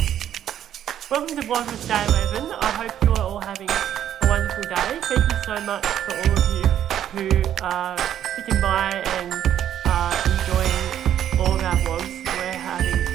Welcome to Vlogmas Day 11. I hope you are all having a wonderful day. Thank you so much for all of you who are sticking by and enjoying all of our vlogs. We're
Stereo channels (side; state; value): left; quieter; 10.6 dB